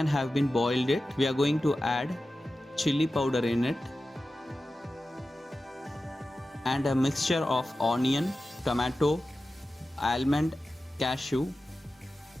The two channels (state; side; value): normal; both; correlation 0.94